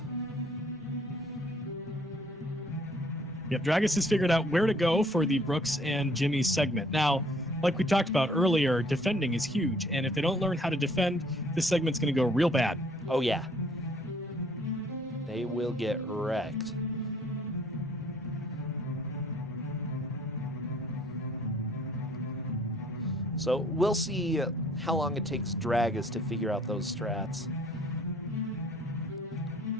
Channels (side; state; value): both; normal; correlation 0.60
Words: Yep, Dragus has figured out where to go for the Brooks and Jimmy segment. Now, like we talked about earlier, defending is huge, and if they don't learn how to defend, this segment's going to go real bad. Oh yeah. They will get wrecked. So we'll see how long it takes Dragus to figure out those strats.